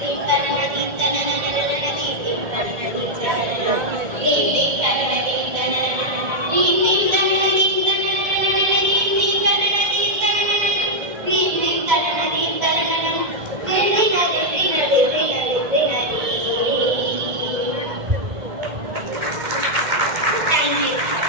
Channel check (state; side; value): late; left; 2.1 ms